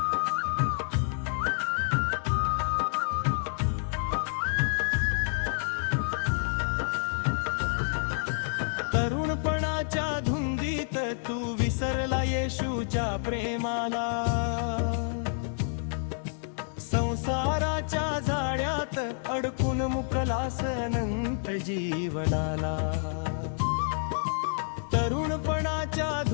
तरुणपणाच्या धुंदीत तू विसरला येशूच्या प्रेमाला. संसाराच्या जाळ्यात अडकून मुकलास अनंत जीवनाला. तरुणपणाच्या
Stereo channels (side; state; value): right; silent; digital silence